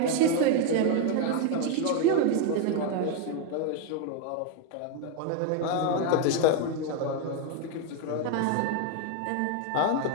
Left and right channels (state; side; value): different; both; correlation 0.01